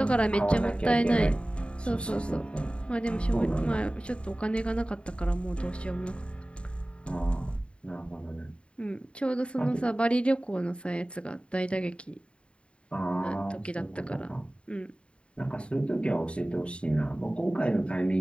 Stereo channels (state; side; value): late; right; 0.057 ms